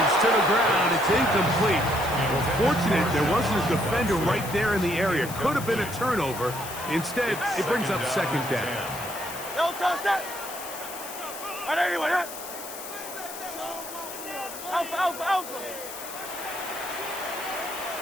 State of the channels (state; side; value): noise; left; hiss, 11 dB below the sound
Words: to the ground. It's incomplete. Well, fortunate there wasn't a defender right there in the area. Could have been a turnover. Instead, it brings up 2nd down. No touch that. Right there, anyway, right? Alpha.